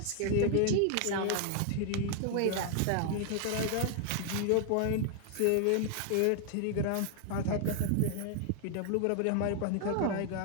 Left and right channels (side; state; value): both; different; correlation 0.00